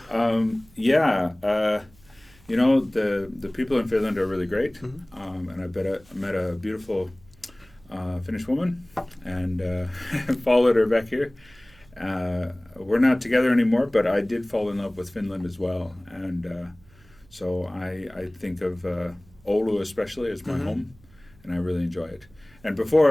The people in Finland are really great, and I met a beautiful Finnish woman and followed her back here. We're not together anymore, but I did fall in love with Finland as well, and so I think of Oulu especially as my home, and I really enjoy it. And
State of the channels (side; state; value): right; noise; hum, 27 dB below the sound